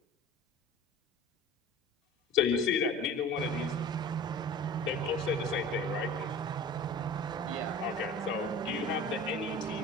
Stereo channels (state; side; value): normal; both; correlation 0.40